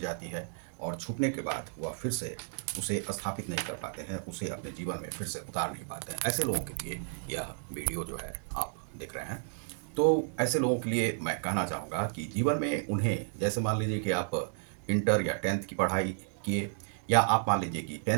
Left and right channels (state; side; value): silent; left; digital silence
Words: है और छूटने के बाद वह फिर से उसे स्थापित नहीं कर पाते हैं, उसे अपने जीवन में फिर से उतार नहीं पाते हैं। ऐसे लोगों के लिए यह वीडियो जो है आप देख रहे हैं। तो ऐसे लोगों के लिए मैं कहना चाहूँगा कि जीवन में उन्हें, जैसे मान लीजिए कि आप इंटर या 10th की पढ़ाई किए या आप मान लीजिए कि